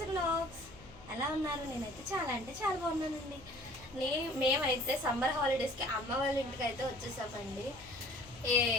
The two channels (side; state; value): left; noise; hum, 20 dB below the sound